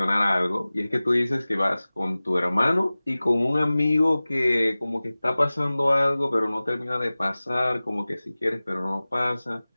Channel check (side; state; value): both; inverted; correlation -0.98